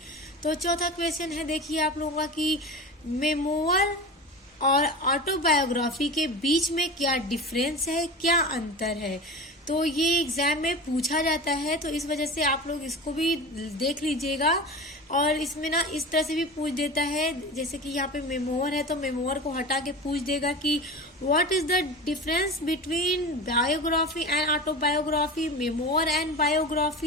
तो चौथा क्वेश्चन है, देखिए आप लोगों का कि मेमोर और ऑटोबायोग्राफी के बीच में क्या डिफरेंस है, क्या अंतर है। तो ये एग्जाम में पूछा जाता है, तो इस वजह से आप लोग इसको भी देख लीजिएगा। और इसमें ना इस तरह से भी पूछ देता है, जैसे कि यहाँ पे मेमोर है तो मेमोर को हटा के पूछ देगा कि what is the difference between biography and autobiography, memoir and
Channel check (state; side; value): normal; both; correlation 0.30